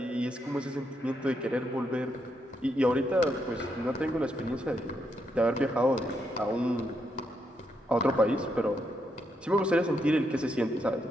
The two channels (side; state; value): both; normal; correlation 0.79